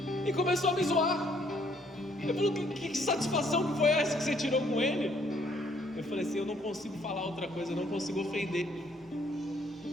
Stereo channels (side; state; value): both; normal; correlation 0.66